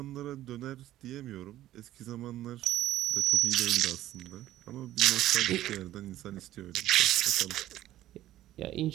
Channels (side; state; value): left; quieter; 14.0 dB